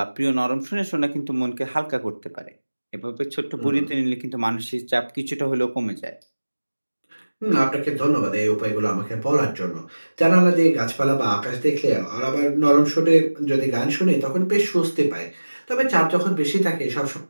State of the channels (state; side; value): inverted; both; correlation -1.00